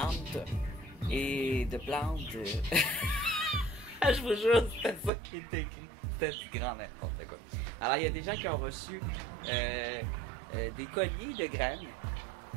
et de plantes. Je vous jure, c'était ça qui était écrit. C'était du grand n'importe quoi. Alors, il y a des gens qui ont reçu des colliers de graines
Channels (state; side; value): drops out; left; at 5.1 s